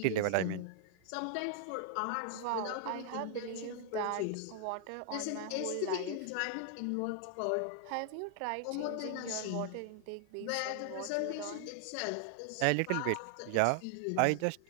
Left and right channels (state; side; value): different; both; correlation 0.00